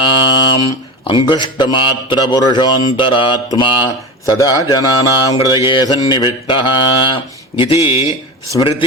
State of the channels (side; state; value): both; normal; correlation 0.26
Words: அங்குஷ்டமாத்திர புருஷோந்தராத்மா சதா ஜனானாம் ஹிருதயே சந்நிவிஷ்டः இதி